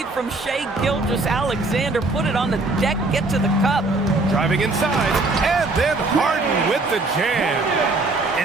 from Shea Gilgeous-Alexander. Put it on the deck, get to the cup. Driving inside, and then Harden with the jam.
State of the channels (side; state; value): left; quieter; 3.2 dB